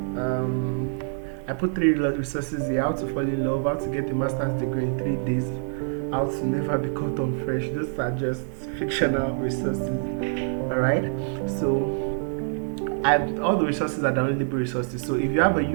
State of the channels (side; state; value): left; silent; digital silence